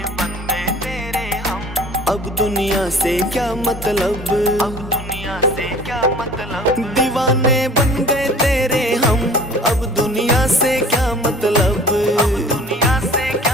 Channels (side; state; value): both; normal; correlation 0.47